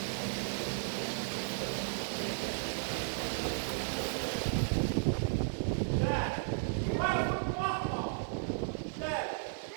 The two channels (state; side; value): silent; left; digital silence